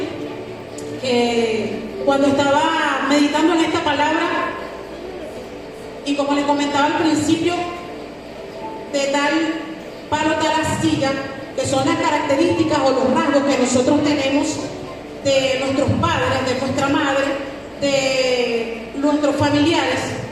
que cuando estaba meditando en esta palabra, y como les comentaba al principio, de tal palo tal astilla, que son las características o los rasgos que nosotros tenemos de nuestros padres, de nuestra madre, de nuestros familiares.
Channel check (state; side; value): identical; both; correlation 1.00